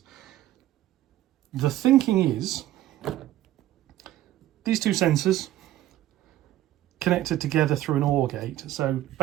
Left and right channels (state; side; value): quieter; left; 14.0 dB